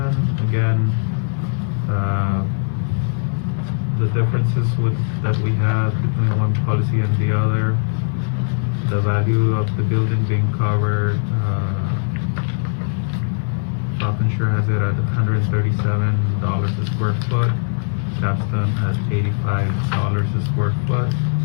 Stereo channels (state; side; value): silent; right; digital silence